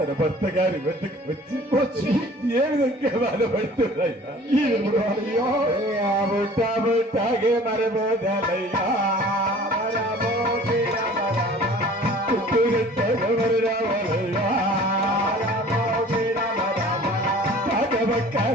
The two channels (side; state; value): both; normal; correlation 0.48